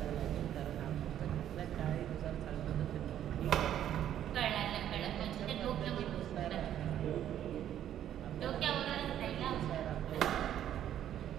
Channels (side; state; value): left; quieter; 10.9 dB